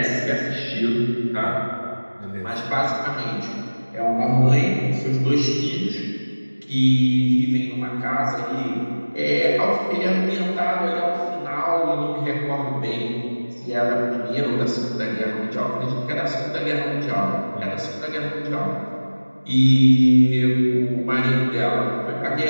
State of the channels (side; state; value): both; inverted; correlation -1.00